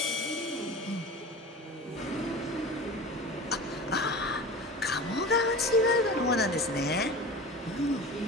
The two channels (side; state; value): both; normal; correlation 0.34